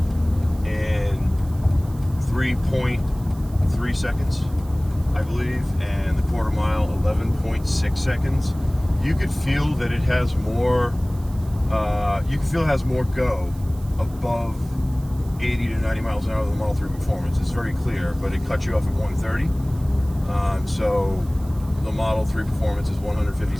3.3 seconds, I believe, and the quarter mile 11.6 seconds. You could feel that it has more. You can feel it has more go above 80 to 90 miles an hour than the Model 3 Performance. It's very clear, but it cuts you off at 130. So the Model 3 Performance is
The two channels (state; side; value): noise; right; hiss, 24 dB below the sound